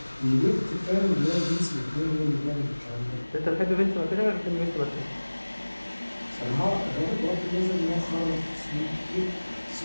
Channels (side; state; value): both; inverted; correlation -1.00